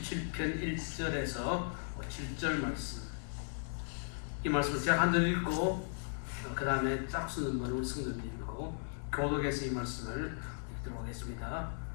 1절에서 7절 말씀. 이 말씀을 제가 한 절 읽고 그 다음에 짝수는 번호 성도님 읽고 교독해서 이 말씀을 읽도록 하겠습니다.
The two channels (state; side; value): silent; right; 53 dB below the other